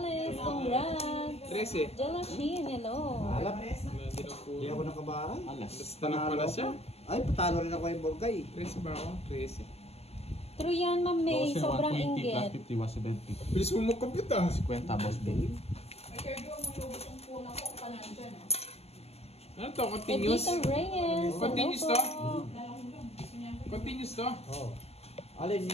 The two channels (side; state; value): right; late; 0.30 ms